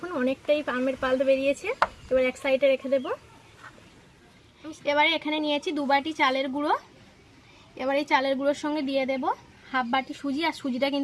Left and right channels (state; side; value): identical; both; correlation 1.00